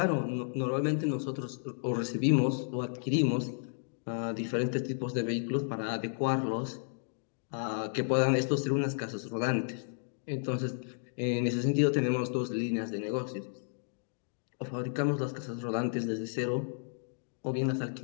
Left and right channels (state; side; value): silent; right; digital silence